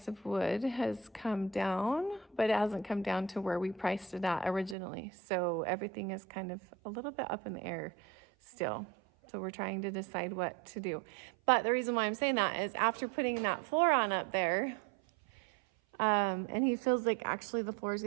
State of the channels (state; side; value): drops out; left; at 4.8 s